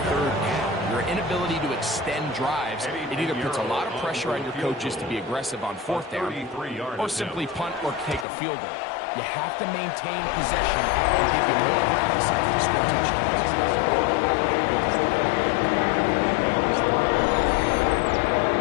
3rd down. Your inability to extend drives, it either puts a lot of pressure on your coaches to be aggressive on 4th down, or simply punt or take a field goal. You have to maintain possession and give you more practice to score touchdowns.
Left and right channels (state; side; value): drops out; right; at 8.2 s